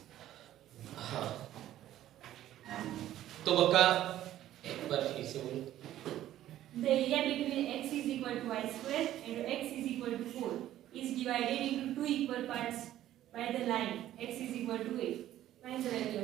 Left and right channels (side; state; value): left; quieter; 13.0 dB